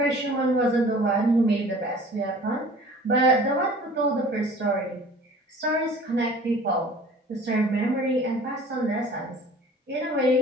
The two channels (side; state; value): both; normal; correlation 0.46